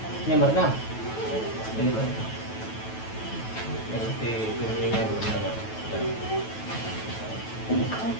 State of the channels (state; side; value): late; right; 9.2 ms